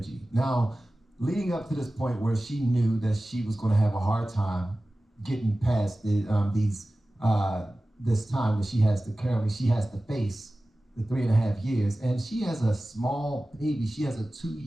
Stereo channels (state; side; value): normal; both; correlation 0.96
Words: Now, leading up to this point where she knew that she was going to have a hard time getting past this time that she has to face the 3.5 years, and she has a small baby. She has a